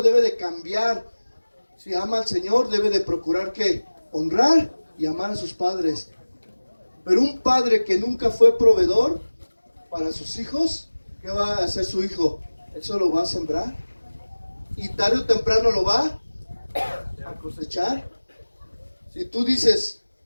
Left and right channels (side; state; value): both; inverted; correlation -1.00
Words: debe de cambiar. Si ama al Señor, debe de procurar ¿qué? Honrar y amar a sus padres. Pero un padre que nunca fue proveedor para sus hijos, ¿qué va a hacer su hijo? Eso lo va a sembrar. Y tarde o temprano lo va a cosechar. Si tú dices,